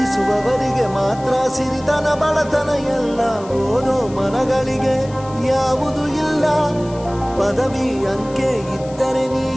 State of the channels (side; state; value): left; noise; hiss, 22 dB below the sound